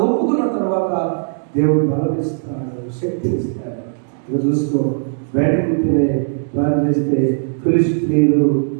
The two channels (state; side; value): silent; left; digital silence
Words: ఒప్పుకున్న తర్వాత దేవుడు బలమిస్తాడు, శక్తి ఇస్తాడు. ఇక చూసుకో, బయట పుట్టినే ప్లాన్ చేస్తే ఫిలిష్తీయులు